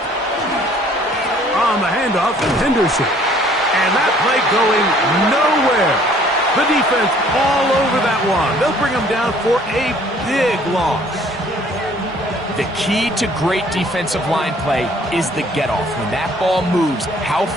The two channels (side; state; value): both; normal; correlation 0.58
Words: On the handoff, Henderson. And that play going nowhere. The defense all over that one. They'll bring them down for a big loss. The key to great defensive line play is the get-off. When that ball moves, how